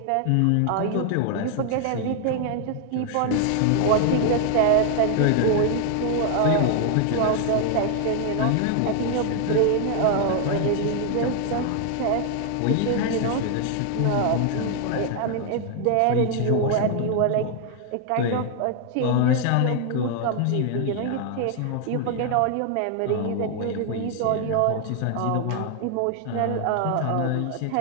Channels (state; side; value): different; both; correlation 0.00